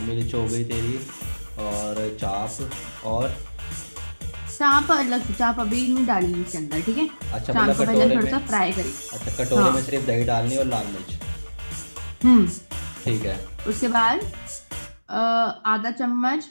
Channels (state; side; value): inverted; both; correlation -1.00